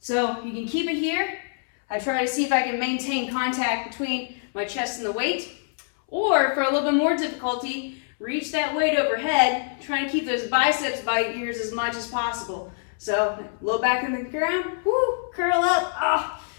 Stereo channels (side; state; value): right; silent; 62 dB below the other